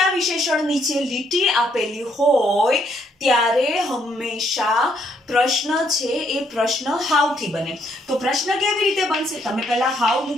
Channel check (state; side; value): normal; both; correlation 0.71